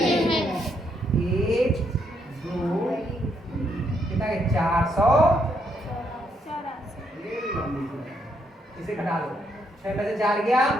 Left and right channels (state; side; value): normal; both; correlation 0.75